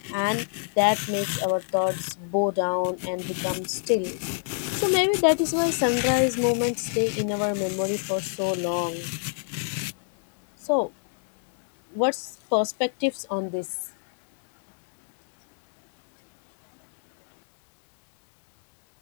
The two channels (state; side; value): silent; right; digital silence